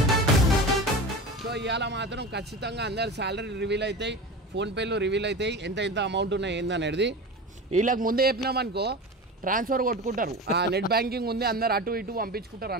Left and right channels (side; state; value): both; normal; correlation 0.30